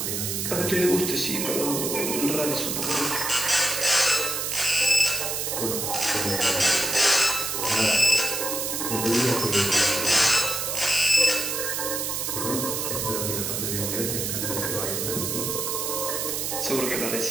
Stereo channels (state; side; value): noise; right; hiss, 2 dB below the sound